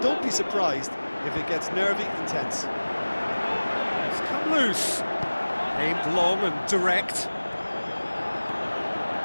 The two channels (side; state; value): both; inverted; correlation -1.00